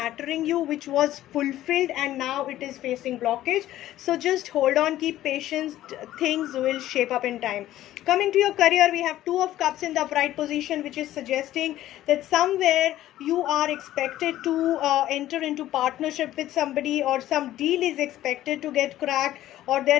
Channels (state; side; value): quieter; right; 13.9 dB